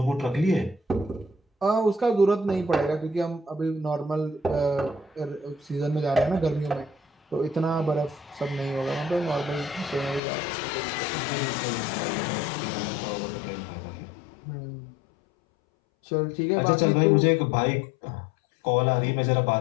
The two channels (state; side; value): drops out; right; at 10.2 s